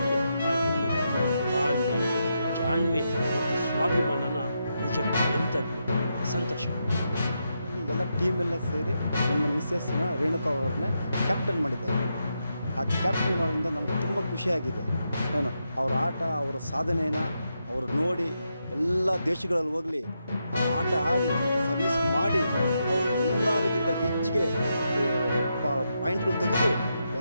ಆ ಹೆಣ್ಣುಗಳ ತಾಳ್ಮೆ, ಜಾಣ್ಮೆ ಮತ್ತು ಸ್ವಾಭಿಮಾನನ ನಿಜಕ್ಕೂ ನೆನಪಬೇಕು. ಸಂತೋಷ. ಎಲ್ಲ ಟೀಮೆಲ್ಲ ಸೇರಿ ನನ್ನ ಮಿಸ್ಸಸ್ನ ರೇಣುಕಾ ಅವ್ರನ್ನೇ ಕ್ಯಾಪ್ಟನ್ ಮಾಡಿದ್ದಾರೆ. ಆ ಕ್ಯಾಪ್ಟನ್ ಮಾಡೋದ್ರಿಂದ ನನಗೆ ತುಂಬ ಖುಷಿಯಾಗಿದೆ. ಏನು ಅವ್ರ ಆಟ, ಅವರ ಸಾಧನೆಯನ್ನು ಅವರು ನೋಡಿ ಎಲ್ಲ ದೇಶಗಳಲ್ಲಿ ಹೋಗಲಿ ಆ ಆಟ ಆಡಿ ಸರ್ವಿಸ್ ಮಾಡಿ ಅವರು ಎಲ್ಲರಿಗಿಂತ ಹೆಚ್ಚಿಗೆ ಪಾಯಿಂಟ್ಗಳು ತೆಗೆದು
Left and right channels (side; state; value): both; inverted; correlation -0.83